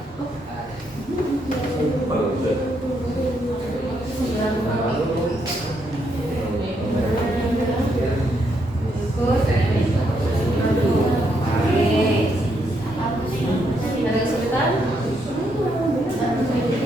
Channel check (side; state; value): both; normal; correlation 0.76